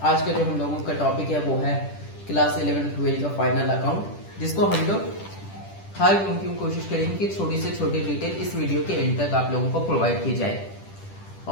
आज का जो हम लोगों का टॉपिक है वो है क्लास 11-12 का फाइनल अकाउंट, जिसको हम लोग हर मुमकिन कोशिश करेंगे कि छोटी से छोटी डिटेल इस वीडियो के एंड तक आप लोगों को प्रोवाइड की जाए।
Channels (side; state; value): right; late; 10 ms